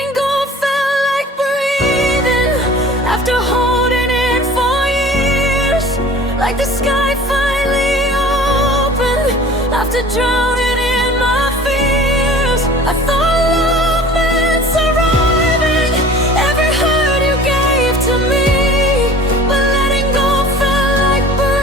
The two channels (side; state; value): both; normal; correlation 0.44